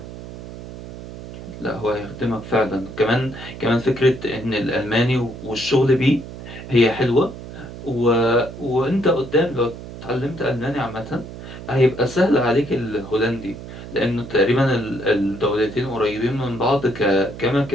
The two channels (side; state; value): right; noise; hum, 12 dB below the sound